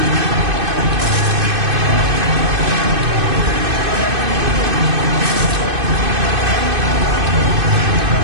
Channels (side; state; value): left; late; 2.5 ms